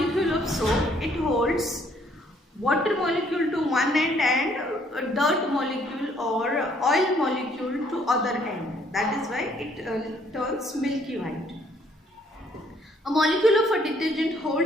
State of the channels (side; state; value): both; normal; correlation 0.65